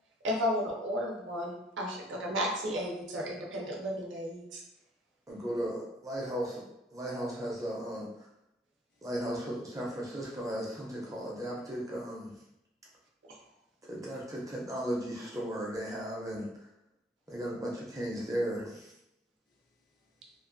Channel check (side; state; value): both; normal; correlation 0.59